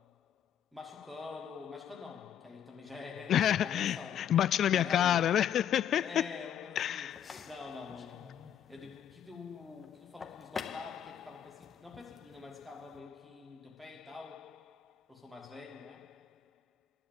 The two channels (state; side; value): quieter; right; 9.6 dB